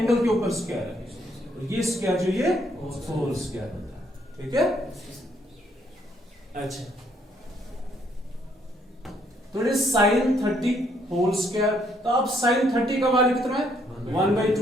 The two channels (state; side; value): normal; both; correlation 0.70